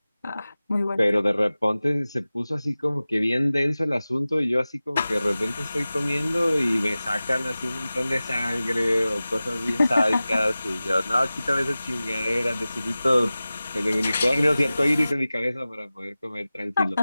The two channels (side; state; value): both; inverted; correlation -0.97